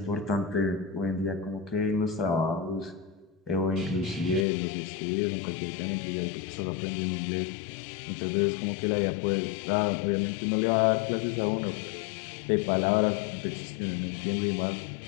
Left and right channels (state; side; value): drops out; right; at 4.5 s